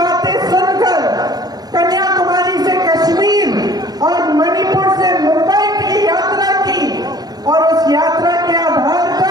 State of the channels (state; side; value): late; left; 0.19 ms